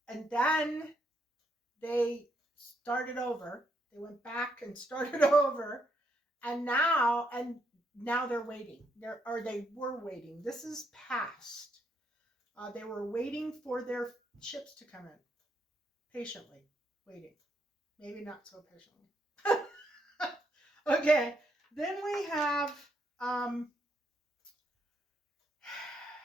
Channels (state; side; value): normal; both; correlation 0.76